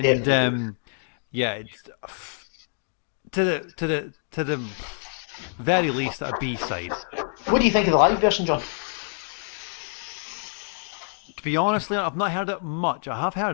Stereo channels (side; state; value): right; silent; digital silence